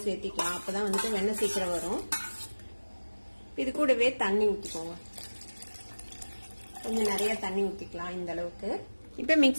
சேர்த்திக்கலாம். அப்பதான் வந்துட்டு வெண்ணெய் சீக்கிரம் வரும். இது கூடவே தண்ணி ஊத்திக்கோங்க. கொஞ்சம் நிறைய தண்ணி ஊத்திக்கலாம் இந்த அளவுக்கு. இப்ப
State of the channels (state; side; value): inverted; both; correlation -1.00